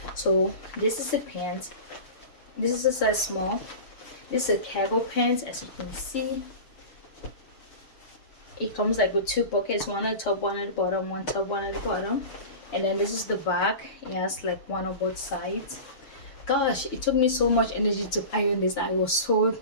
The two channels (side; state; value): right; late; 6.8 ms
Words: So this is the pants. This is a size small. This is a cargo pants. As you can see, it comes like with two pockets, one at the top, one at the bottom, one top, one at the bottom. And then this is the back. It has like one on both sides. Gosh, it took me so much energy to iron this. I was so